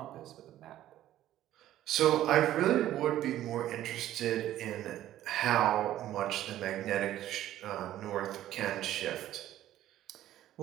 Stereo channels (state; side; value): quieter; left; 13.1 dB